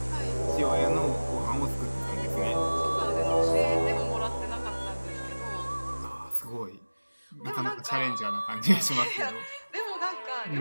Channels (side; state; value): both; inverted; correlation -1.00